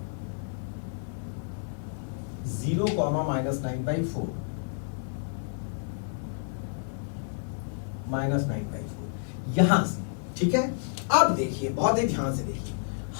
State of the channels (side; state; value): right; silent; digital silence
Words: -9/4, -9/4 यहां से, ठीक है। अब देखिए, बहुत ही ध्यान से देखिए,